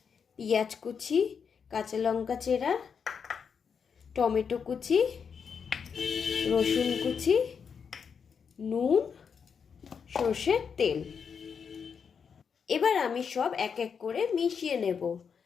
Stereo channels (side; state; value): right; quieter; 6.5 dB